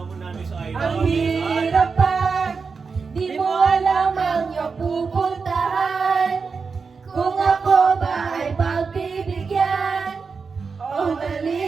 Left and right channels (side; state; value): left; quieter; 5.1 dB